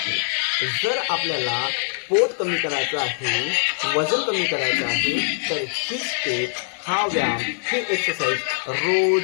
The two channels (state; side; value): silent; right; digital silence